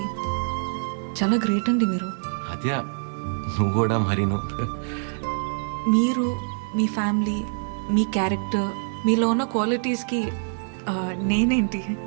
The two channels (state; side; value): silent; left; 60 dB below the other